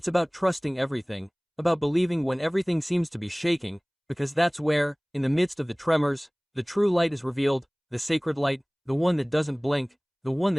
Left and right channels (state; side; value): identical; both; correlation 1.00